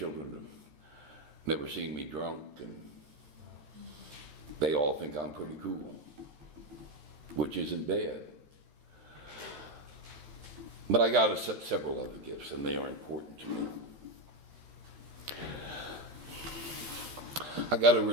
have never seen me drunk, and they all think I'm pretty cool, which isn't bad. But I got several other gifts, and they are important to me. I got a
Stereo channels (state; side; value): late; left; 13 ms